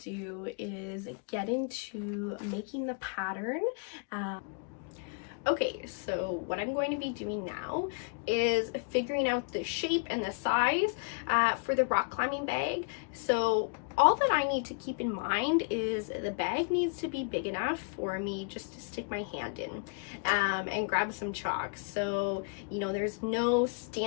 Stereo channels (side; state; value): right; quieter; 36.3 dB